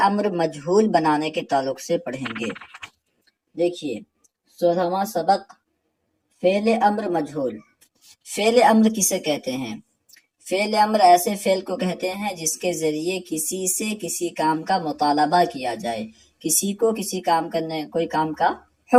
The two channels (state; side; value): identical; both; correlation 1.00